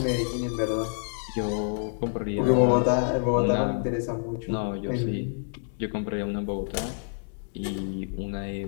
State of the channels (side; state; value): right; silent; digital silence